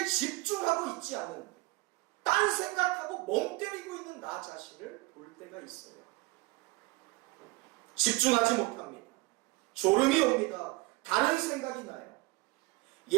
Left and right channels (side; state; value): left; quieter; 23.3 dB